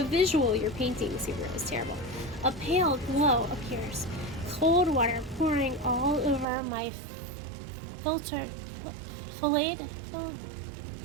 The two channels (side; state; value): left; drops out; at 6.5 s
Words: visual you're painting, Subaru, is terrible. A pale glow appears. Cold water pouring all over my